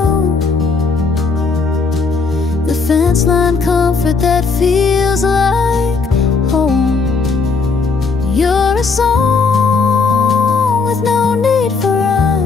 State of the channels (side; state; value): right; quieter; 4.5 dB